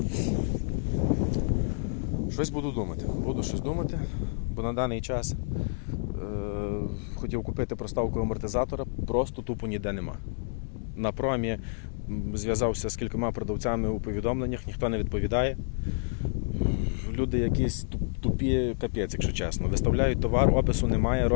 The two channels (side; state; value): right; silent; digital silence